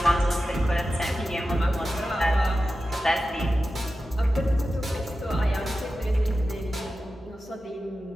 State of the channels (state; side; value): normal; both; correlation 0.93